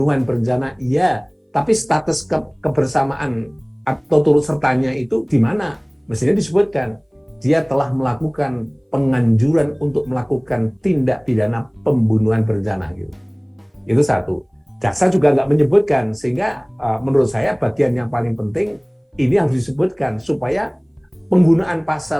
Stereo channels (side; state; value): both; identical; correlation 1.00